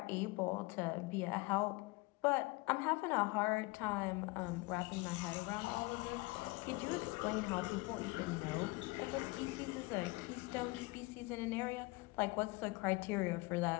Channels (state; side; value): quieter; right; 24.1 dB